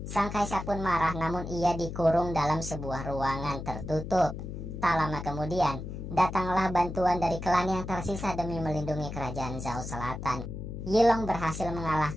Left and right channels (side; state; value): left; noise; hum, 7 dB below the sound